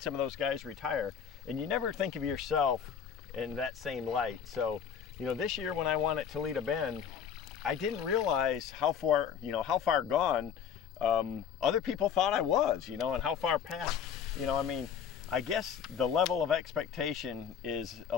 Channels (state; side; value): quieter; right; 7.8 dB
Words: of those guys retire. And you never think of yourself in that same light. So, this year when I won at Toledo Bend, I didn't realize how far gone other people thought I was, and how far past, I guess the level of expectation is a